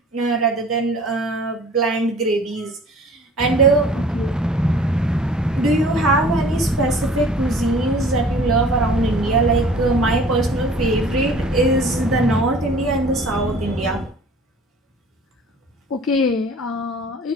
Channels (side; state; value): both; normal; correlation 0.48